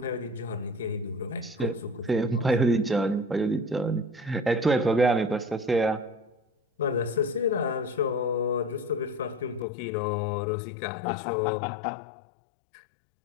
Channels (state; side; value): drops out; right; at 9.7 s